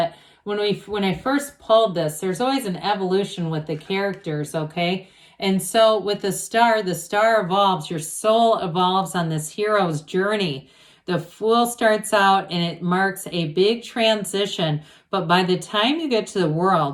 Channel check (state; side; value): identical; both; correlation 1.00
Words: when I first pulled this, there's always an evolution with the characters, okay? And so with the Star evolves. Your soul evolves on this hero's journey. The Fool starts out and it marks a big transition. But by the time you get to the